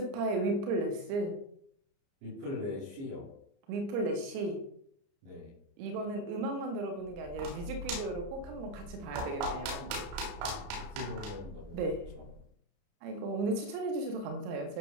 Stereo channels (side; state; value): left; late; 29 ms